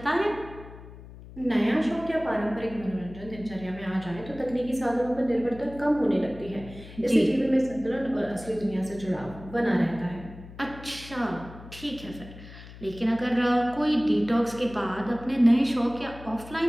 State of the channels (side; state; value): left; noise; hum, 16 dB below the sound